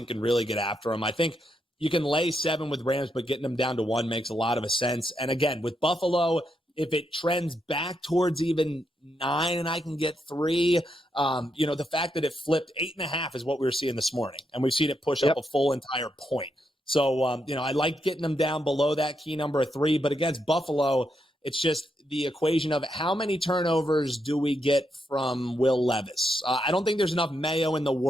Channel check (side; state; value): both; normal; correlation 0.81